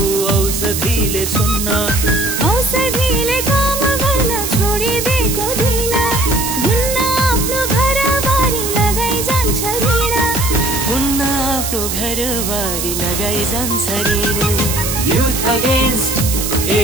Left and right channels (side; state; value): right; noise; hiss, 3 dB below the sound